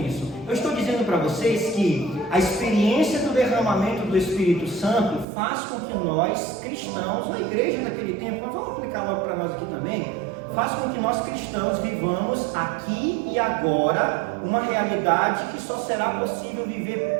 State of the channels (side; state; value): left; drops out; at 5.2 s